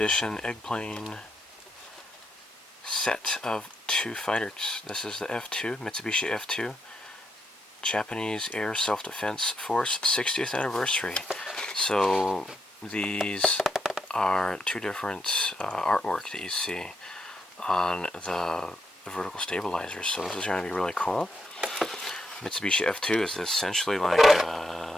Eggplane set of 2 fighters. This is the F-2, Mitsubishi F-2, Japanese Air Self-Defense Force 60th anniversary. So these are 2 different artwork that you see on the vertical stabilizers. So this is going to be really cool. Mitsubishi F-2 is essentially like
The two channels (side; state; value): both; normal; correlation 0.80